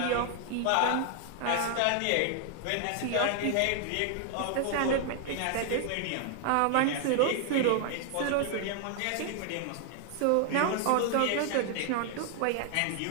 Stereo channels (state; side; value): different; both; correlation 0.00